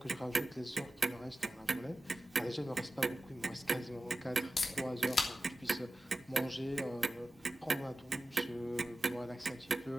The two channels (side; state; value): both; normal; correlation 0.94